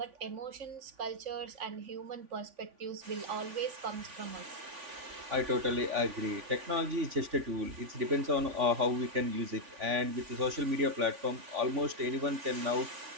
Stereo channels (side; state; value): left; late; 3.5 ms